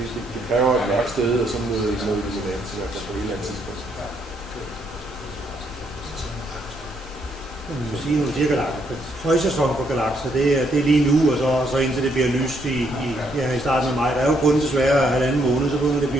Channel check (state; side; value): normal; both; correlation 0.73